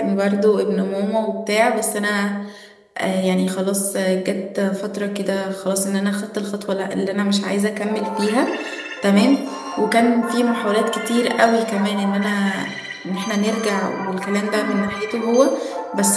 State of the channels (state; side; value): identical; both; correlation 1.00